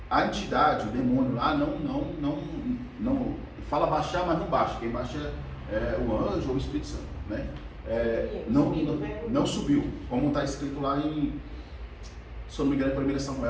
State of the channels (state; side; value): identical; both; correlation 1.00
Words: A entidade, o demônio lá, não fala baixar, mas não baixa. Quem baixa é o anjo ou o Espírito Santo, né? Não subiu, como está escrito lá em, se eu não me engano, em 1